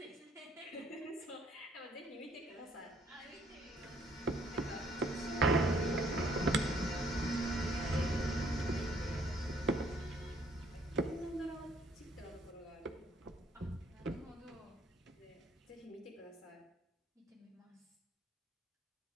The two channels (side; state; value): both; normal; correlation 0.65